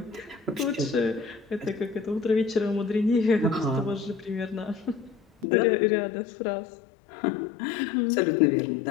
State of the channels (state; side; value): drops out; right; at 5.5 s